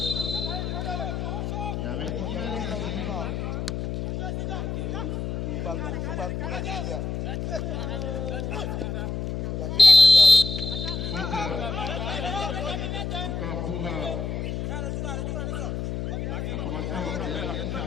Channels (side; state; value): left; noise; hum, 3 dB below the sound